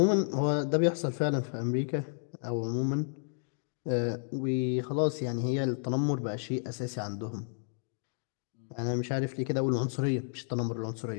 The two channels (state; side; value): silent; right; digital silence